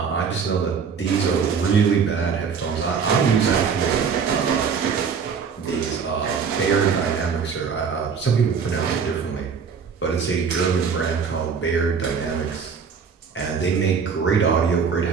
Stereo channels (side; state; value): left; quieter; 6.2 dB